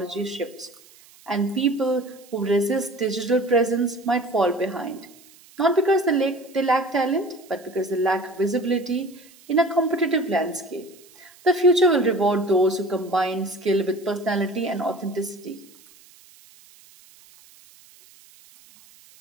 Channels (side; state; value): right; noise; hiss, 25 dB below the sound